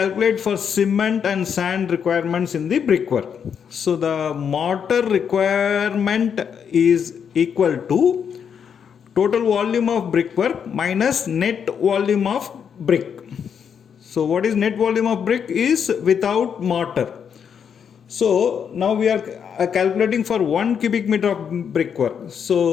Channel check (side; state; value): right; quieter; 7.4 dB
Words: for cement and sand requirements in the brickwork. So the mortar requirement is equal to total volume of brickwork minus net volume of brick. So what is net volume of brick is without mortar. So now we are calculating for 1 cubic meter of brickwork.